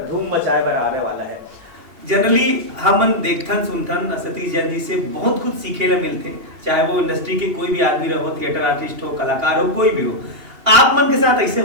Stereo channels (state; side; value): late; left; 2.8 ms